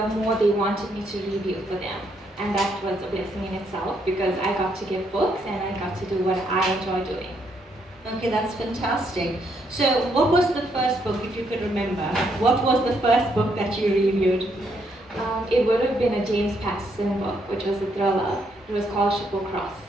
more they wanted me to review for them. And that was a blessing in itself because I got to give books and I got to do what I enjoy doing. Okay, that's fantastic. So what was the first book, if you could remember? What was the first book that you reviewed? It would have been a James Patterson book, which was a thriller. It was called Triple Cross.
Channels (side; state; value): both; normal; correlation 0.74